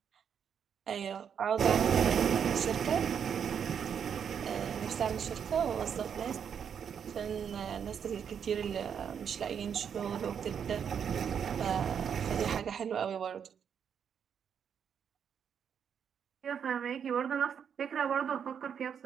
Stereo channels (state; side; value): quieter; left; 7.7 dB